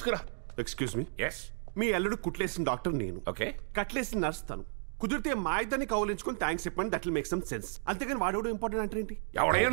Excuse me. ఎస్. మీ అల్లుడు కుట్లేసిన డాక్టర్ నేను. ఓకే. కట్లేసిన నర్స్ తను. కుదిరితే మా ఇద్దరిని కౌలించుకొని థ్యాంక్స్ చెప్పండి. That will make some sense. అంతేగాని వాడేవాడు ఇంపార్టెంట్ అంటే ఏంటి? ఎవడయ్యా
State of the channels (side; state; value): left; silent; digital silence